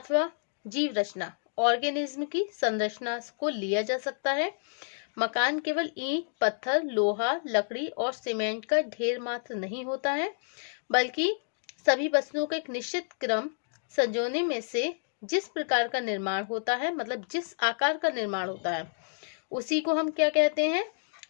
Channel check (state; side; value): silent; right; digital silence